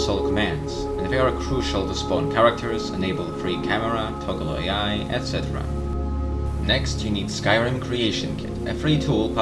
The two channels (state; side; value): identical; both; correlation 1.00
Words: commands, and they are crucial to spawn characters, enable free camera, toggle AI, etc. Next, you need Skyrim Creation Kit, a free tool